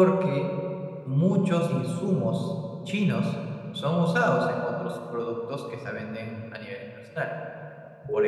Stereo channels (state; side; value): identical; both; correlation 1.00